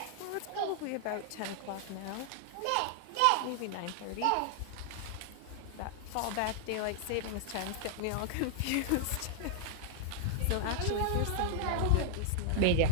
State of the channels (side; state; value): both; different; correlation -0.01